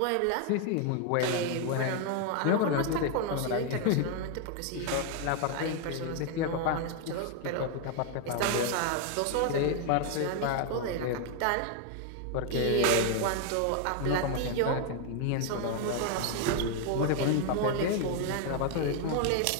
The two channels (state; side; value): different; both; correlation 0.01